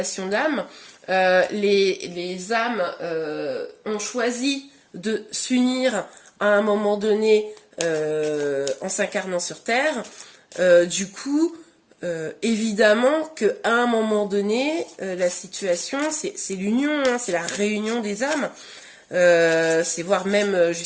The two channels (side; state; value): both; identical; correlation 1.00